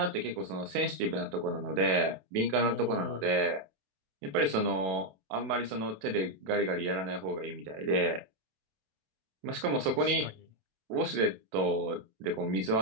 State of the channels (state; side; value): late; left; 27 ms